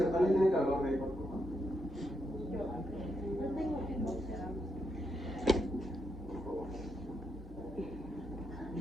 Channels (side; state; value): both; normal; correlation 0.81